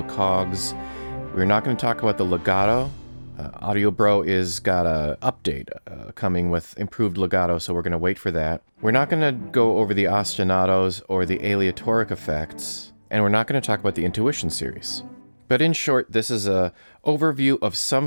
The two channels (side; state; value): both; inverted; correlation -1.00